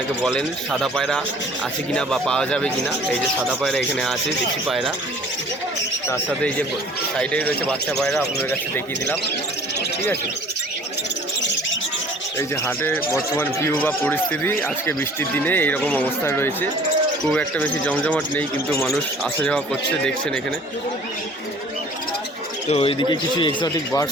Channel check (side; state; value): both; normal; correlation 0.50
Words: বলেন। সাদা পায়রা আছে কিনা বা পাওয়া যাবে কিনা, এই যে সাদা পায়রা এখানে আছে, দেশি পায়রা। তার সাথে এই যে সাইডেই রয়েছে বাচ্চা পায়রা, আপনাদের কাছে দেখিয়ে দিলাম, ঠিক আছে। এই যে হাটে বর্তমান ভিউ বা পরিস্থিতি আজকে বৃষ্টির দিনে এইরকম অবস্থায় রয়েছে। খুব একটা বেশি জমজমাট নেই, কিন্তু মানুষ আসা যাওয়া করছে, দেখছেন এখানে। তো এইদিকে কিছু এক্সোটিক